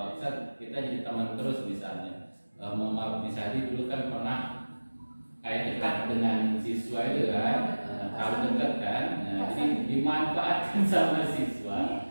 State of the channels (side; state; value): both; inverted; correlation -1.00